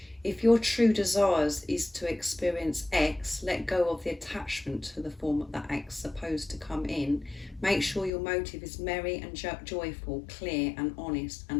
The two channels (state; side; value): drops out; right; at 8.1 s